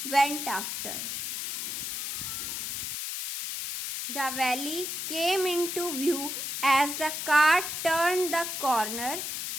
went after. The valley came into view as the car turned the corner.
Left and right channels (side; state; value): left; noise; hiss, 4 dB below the sound